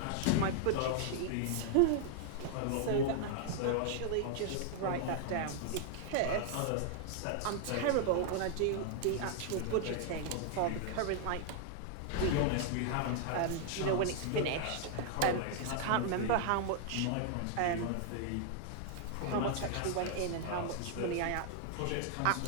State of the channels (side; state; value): both; different; correlation 0.00